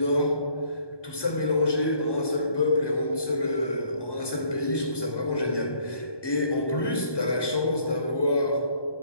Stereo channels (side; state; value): right; late; 1.2 ms